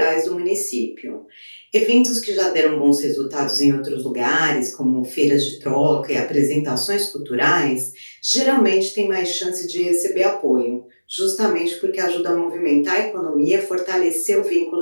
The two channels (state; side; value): inverted; both; correlation -1.00